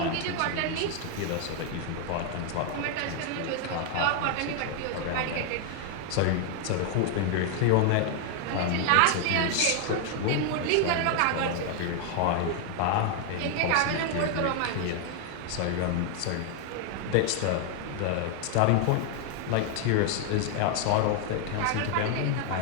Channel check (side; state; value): both; different; correlation 0.00